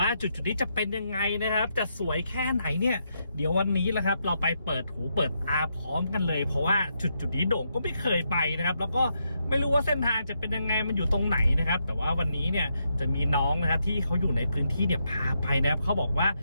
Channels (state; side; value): inverted; both; correlation -0.81